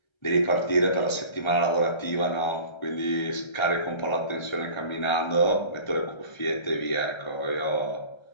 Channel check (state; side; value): late; right; 1.3 ms